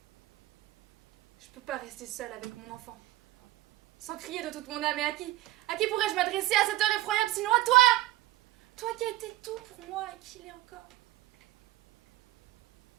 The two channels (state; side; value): quieter; left; 16.4 dB